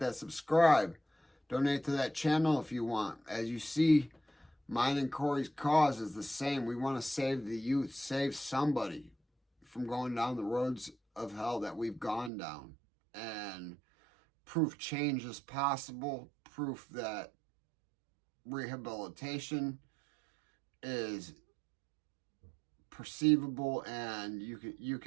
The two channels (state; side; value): drops out; left; at 12.3 s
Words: subscribe, donate to that channel if you want. As you see, mine and Corey's cause is the same. We want to save the youth, save somebody from going down the roads of hell that we've gone down, and proof change is possible, proof that rehabilitation is perceivable, and you